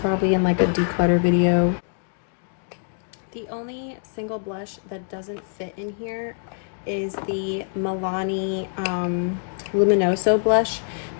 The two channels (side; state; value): right; silent; digital silence